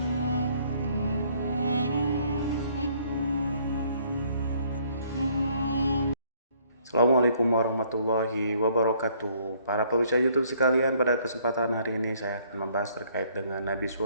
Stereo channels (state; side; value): inverted; both; correlation -0.64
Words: Assalamualaikum warahmatullahi wabarakatuh. Para pemirsa YouTube sekalian, pada kesempatan hari ini saya akan membahas terkait dengan Nabi